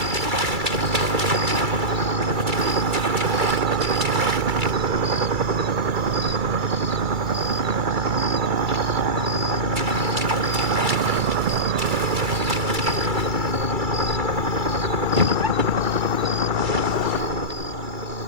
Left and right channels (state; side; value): late; left; 2.3 ms